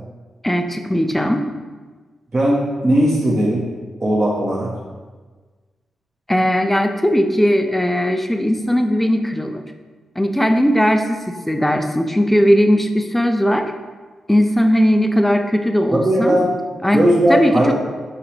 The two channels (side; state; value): both; normal; correlation 0.94